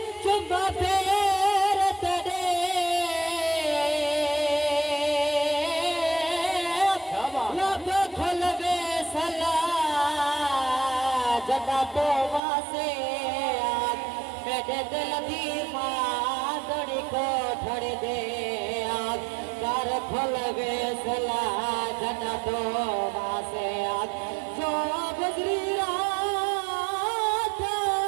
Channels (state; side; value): drops out; left; at 12.4 s